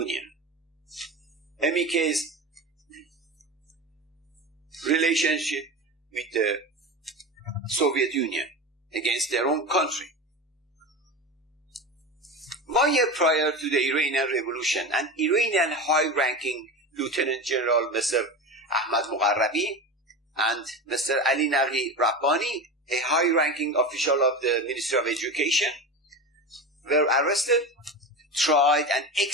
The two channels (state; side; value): normal; both; correlation 0.26